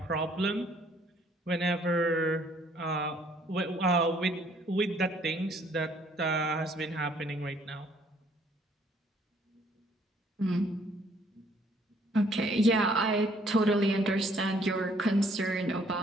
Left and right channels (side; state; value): both; normal; correlation 0.63